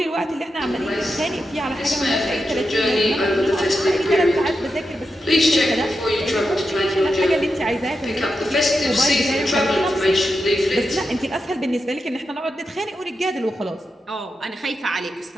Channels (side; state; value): both; normal; correlation 0.88